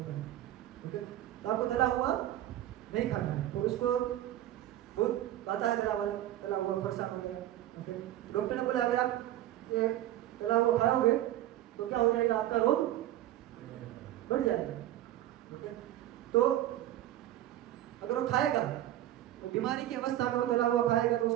का, ओके, तो आपको तला हुआ नहीं खाना है। तो उसको बहुत आता है तला हुआ परेशान हो गया, ओके, डॉक्टर ने बोला अगर आप ये तला हुआ खाओगे तो क्या हो जाएगा, आपका रोग बढ़ जाएगा, ओके। तो अगर वो खाएगा, वो बीमारी की अवस्था में वो तला हुआ खाएगा, तो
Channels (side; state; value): left; quieter; 13.4 dB